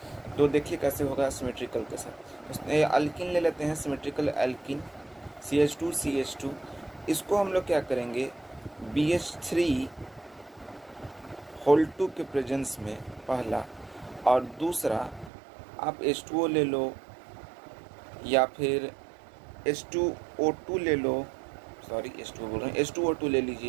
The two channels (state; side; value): drops out; left; at 15.3 s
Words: तो देखिए कैसे होगा सिमेट्रिकल के साथ। अल्कीन ले लेते हैं, सिमेट्रिकल एल्कीन CH2 इसको हम लोग क्या करेंगे, BH3 के प्रेजेंस में पहला, और दूसरा आप H2O ले लो या फिर H2O2 ले लो, सॉरी H2O बोल रहे हैं, H2O2 ले